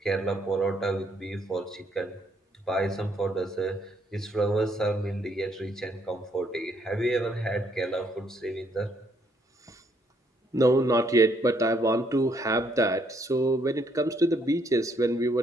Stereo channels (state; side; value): normal; both; correlation 0.70